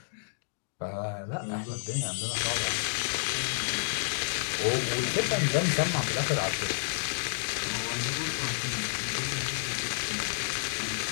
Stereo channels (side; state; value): right; silent; digital silence